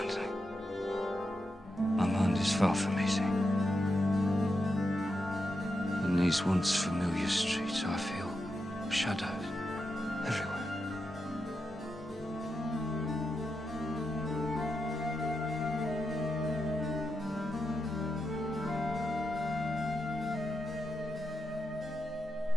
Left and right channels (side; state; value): both; normal; correlation 0.86